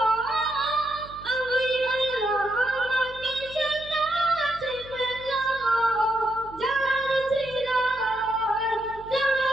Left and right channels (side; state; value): right; noise; hum, 20 dB below the sound